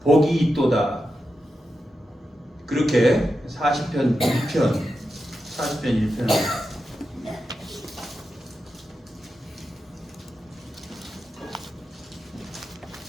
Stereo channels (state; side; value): normal; both; correlation 0.89